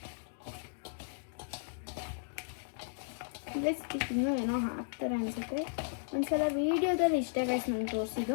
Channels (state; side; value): silent; right; digital silence